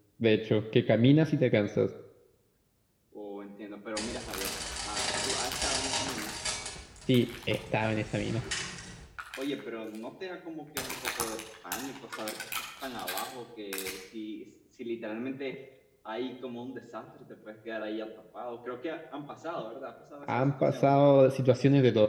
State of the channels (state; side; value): identical; both; correlation 1.00